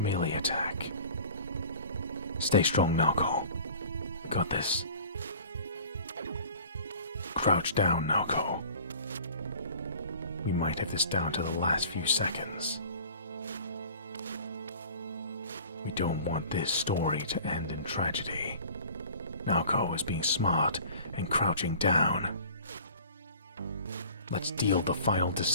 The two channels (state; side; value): inverted; both; correlation -0.45